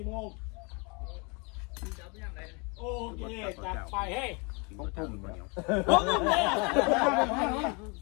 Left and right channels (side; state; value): right; quieter; 31.5 dB